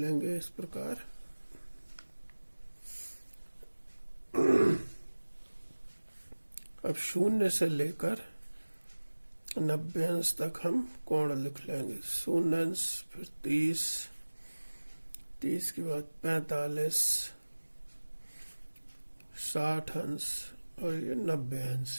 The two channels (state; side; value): inverted; both; correlation -1.00